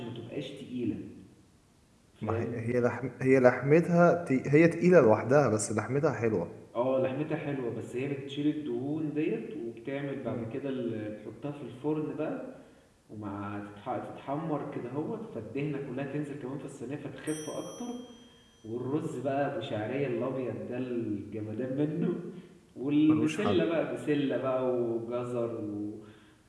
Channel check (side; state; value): both; identical; correlation 1.00